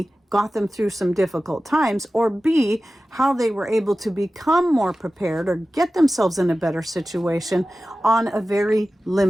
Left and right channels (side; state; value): both; normal; correlation 0.95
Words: got them through some difficult times, or B, how they were able to become more prepared or get themselves in a better situation on a very